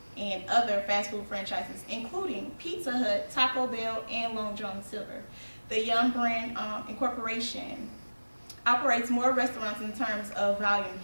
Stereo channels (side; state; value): both; inverted; correlation -1.00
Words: and other fast food franchises, including Pizza Hut, Taco Bell, and Long John Silver. The Young brand incorporation operates more restaurants in terms of volume